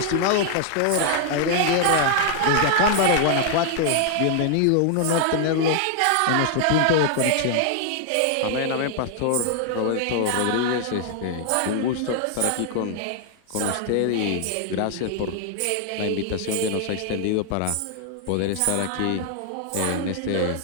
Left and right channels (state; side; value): different; both; correlation 0.00